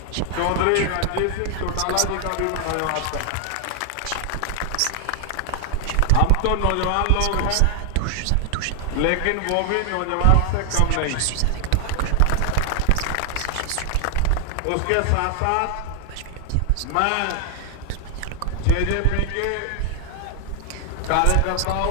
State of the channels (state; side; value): different; both; correlation 0.00